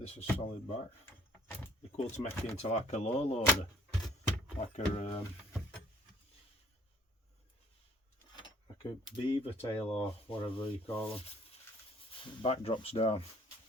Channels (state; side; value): normal; both; correlation 0.57